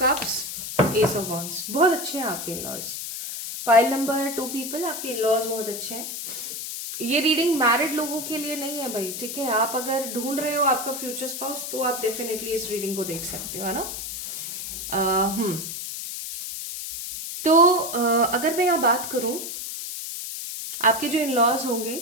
cups, ace of wands. बहुत अच्छे हैं आपके इन-लॉज। पाइल नंबर 2 पीपल, आपके इन-लॉज बहुत अच्छे हैं। ये रीडिंग मैरिड लोगों के लिए नहीं है भाई, ठीक है। आप अगर ढूंढ रहे हो आपका फ्यूचर स्पाउस तो आप डेफिनेटली इस रीडिंग को देख सकते हो, है ना। तो अगर मैं यहाँ बात करूं, आपके जो इन लॉज होंगे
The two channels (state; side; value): noise; left; hiss, 6 dB below the sound